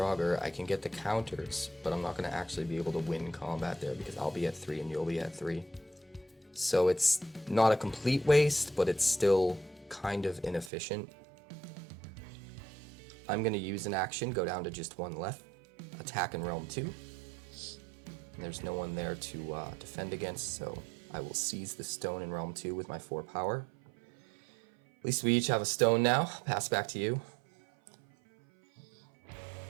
I can get the counters, but I'm not going to actually be able to win combat there because I'll be at 3 and you'll be at 3. So it's not a complete waste, but it's still kind of inefficient. I'm going to use an action, go down to just 1 left, attack in realm 2. And there's no one there to defend against, so I will seize the stone in realm 2 with my 4 power. At least we each have a stone now. Pass back to you.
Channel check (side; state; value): left; drops out; at 10.7 s